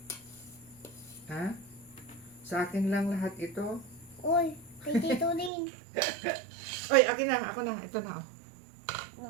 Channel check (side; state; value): left; drops out; at 5.5 s